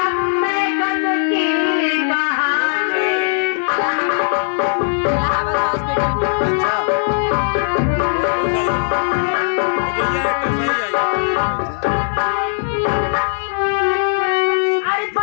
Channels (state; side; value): silent; right; 59 dB below the other